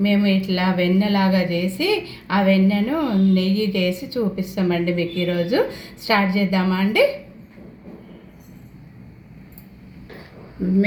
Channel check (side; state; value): both; identical; correlation 1.00